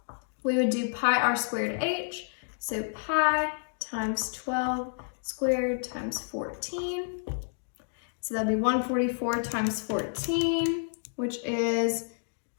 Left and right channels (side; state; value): right; silent; digital silence